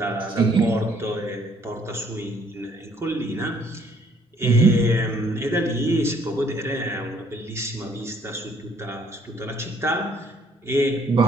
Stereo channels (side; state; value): both; normal; correlation 0.63